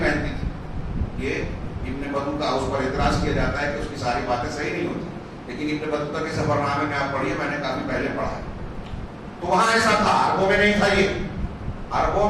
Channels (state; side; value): identical; both; correlation 1.00